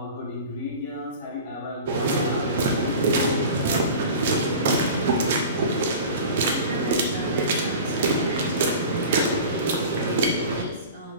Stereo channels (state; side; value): inverted; both; correlation -0.36